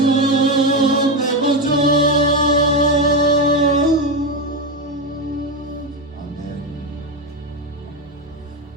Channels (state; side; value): normal; both; correlation 0.12